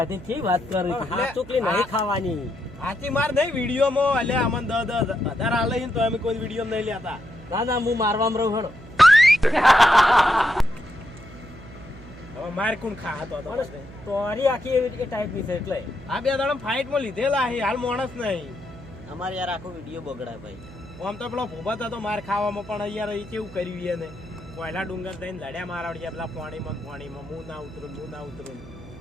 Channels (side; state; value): right; noise; hum, 17 dB below the sound